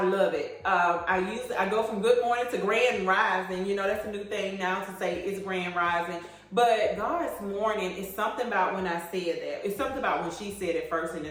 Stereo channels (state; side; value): identical; both; correlation 1.00